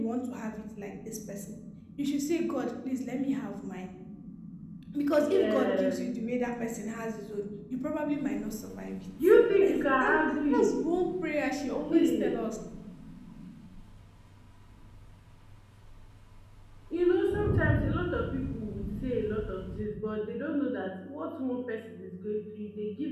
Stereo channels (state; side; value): identical; both; correlation 1.00